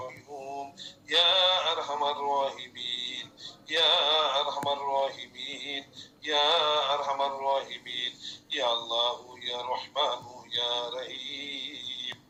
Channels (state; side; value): identical; both; correlation 1.00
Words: يا أرحم الراحمين يا أرحم الراحمين يا أرحم الراحمين يا الله يا رحمن يا رحيم.